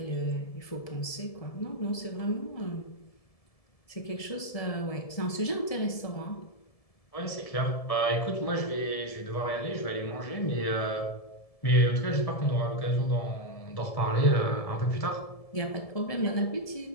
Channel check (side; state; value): right; late; 1.7 ms